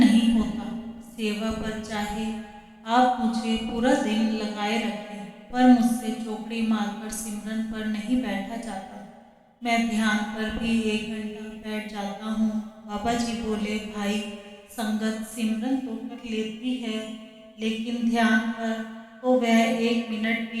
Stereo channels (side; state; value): both; identical; correlation 1.00